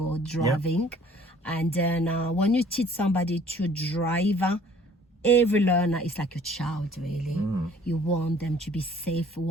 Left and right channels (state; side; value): normal; both; correlation 0.55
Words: driving. Yeah. And then when you teach somebody to drive, every learner is like your child, really. You want them to be safe